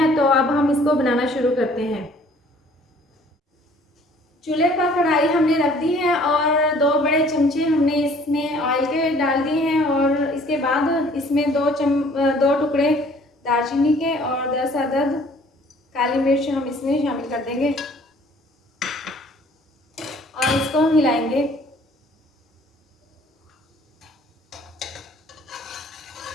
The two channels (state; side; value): normal; both; correlation 0.56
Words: तो अब हम इसको बनाना शुरू करते हैं। चूल्हे पर कढ़ाई हमने रख दी है और 2 बड़े चमचे हमने इसमें ऑयल के डाल दिए हैं और इसके बाद इसमें 2 टुकड़े दालचीनी के और 10 अदद काली मिर्च हम इसमें शामिल कर देंगे और इसको हिलाएंगे।